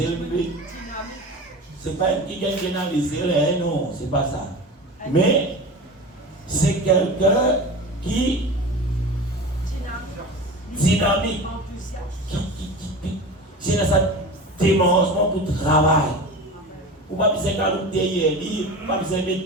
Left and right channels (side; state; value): both; normal; correlation 0.32